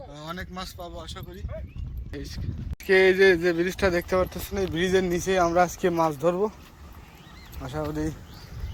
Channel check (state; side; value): identical; both; correlation 1.00